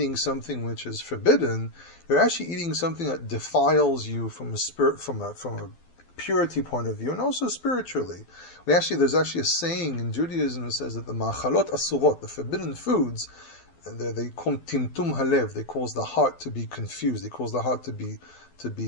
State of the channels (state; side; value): late; right; 12 ms